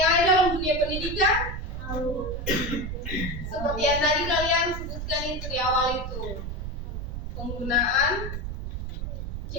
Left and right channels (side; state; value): right; noise; rumble, 5 dB below the sound